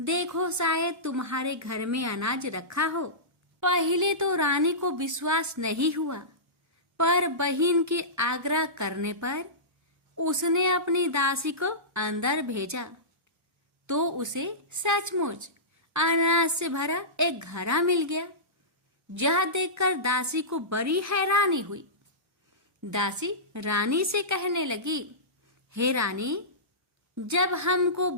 शायद तुम्हारे घर में अनाज रखा हो। पहले तो रानी को विश्वास नहीं हुआ, पर बहन के आग्रह करने पर उसने अपनी दासी को अंदर भेजा तो उसे सचमुच अनाज से भरा एक घड़ा मिल गया। यह देखकर दासी को बड़ी हैरानी हुई। दासी रानी से कहने लगी, हे रानी, जब हमको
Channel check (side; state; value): both; normal; correlation -0.19